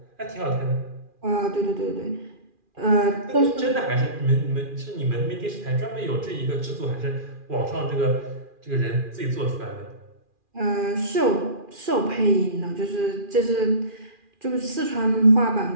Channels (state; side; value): late; left; 2.4 ms